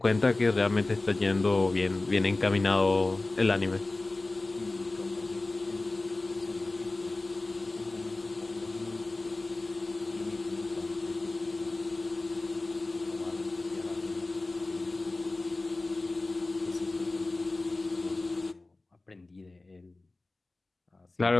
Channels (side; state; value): right; quieter; 3.1 dB